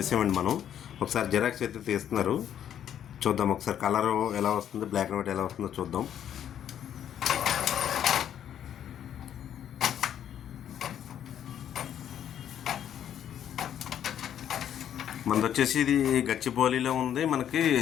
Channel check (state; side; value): quieter; right; 9.9 dB